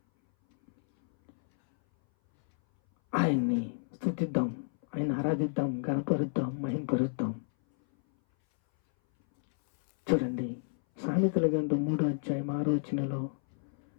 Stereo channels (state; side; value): silent; right; 57 dB below the other